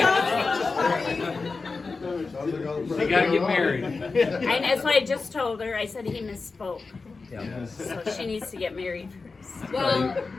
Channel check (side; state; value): right; quieter; 4.1 dB